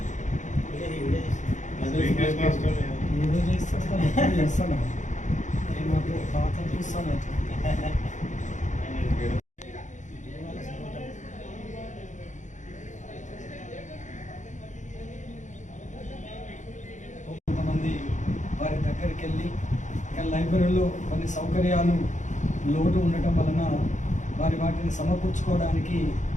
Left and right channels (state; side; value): late; right; 0.35 ms